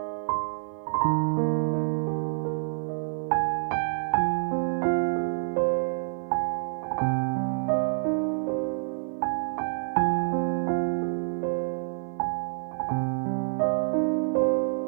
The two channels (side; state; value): left; silent; digital silence